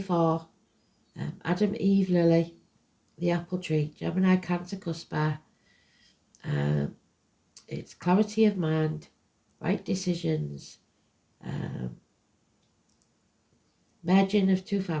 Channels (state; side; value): identical; both; correlation 1.00